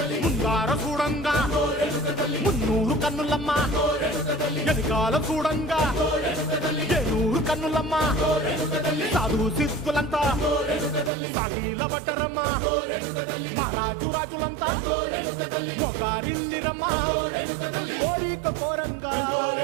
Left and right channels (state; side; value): drops out; left; at 11.1 s